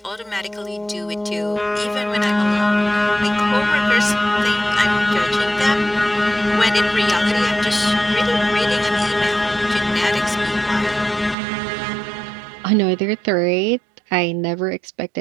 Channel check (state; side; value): drops out; left; at 11.4 s